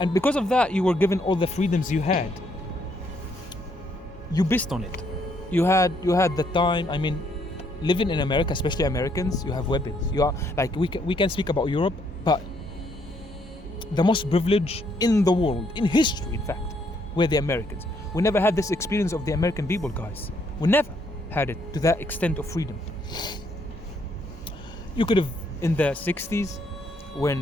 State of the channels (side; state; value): both; normal; correlation 0.71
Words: because of that, you were given all the freedoms you had. You pissed on it. You had the time. I mean, living in America, especially Americans, you have weapons. You are like we can speak about Europe, but the most privileged in the world, in history, in fact, were the Americans. We never had this experience of the American people, guys. We never had it to that extent of freedom. You could have, in the 60s,